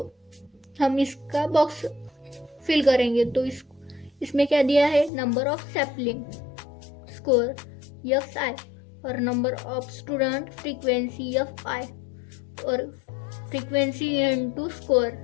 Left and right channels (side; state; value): right; drops out; at 5.1 s